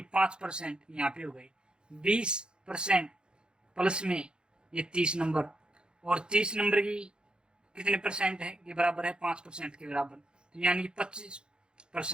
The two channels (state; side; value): late; left; 0.049 ms